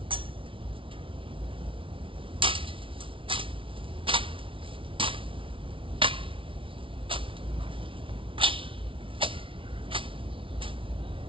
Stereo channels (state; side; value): late; left; 0.25 ms